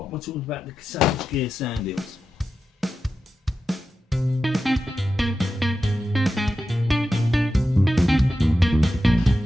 am I talking about? The Savage Gear sand eels.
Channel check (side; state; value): both; normal; correlation 0.91